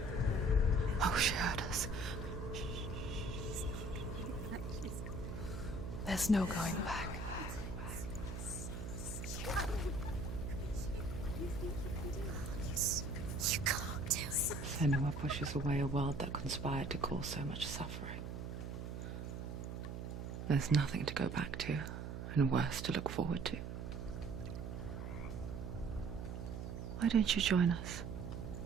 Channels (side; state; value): right; noise; hum, 6 dB below the sound